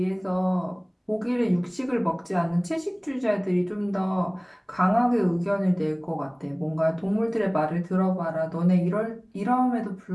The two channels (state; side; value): identical; both; correlation 1.00